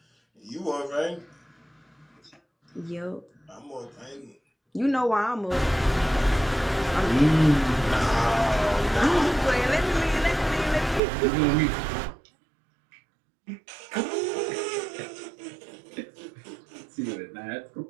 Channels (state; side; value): drops out; left; at 11.0 s